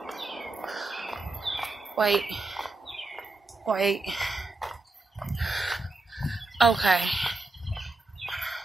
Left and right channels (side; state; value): left; quieter; 3.2 dB